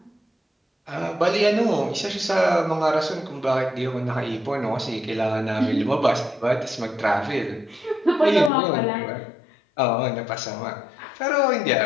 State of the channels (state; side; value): drops out; right; at 8.5 s